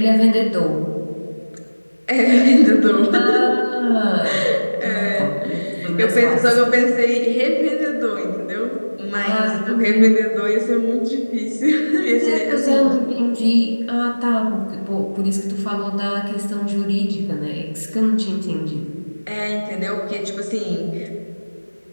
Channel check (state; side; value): inverted; both; correlation -1.00